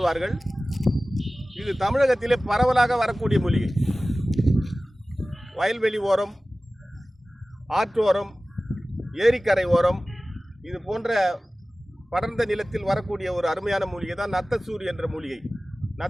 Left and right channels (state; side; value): normal; both; correlation 0.97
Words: இது தமிழகத்திலே பரவலாக வரக்கூடிய மூலிகை. வயல்வெளி ஓரம், ஆற்றோரம், ஏரிக்கரை ஓரம், இது போன்ற படர்ந்த நிலத்தில் வரக்கூடிய ஒரு அருமையான மூலிகை தான் நத்தைச்சூரி என்ற மூலிகை.